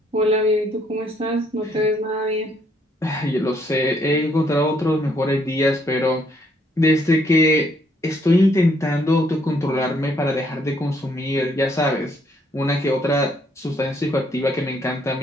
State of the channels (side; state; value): both; normal; correlation 0.69